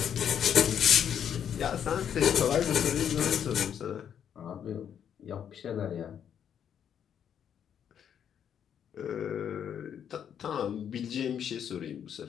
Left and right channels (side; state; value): right; quieter; 8.7 dB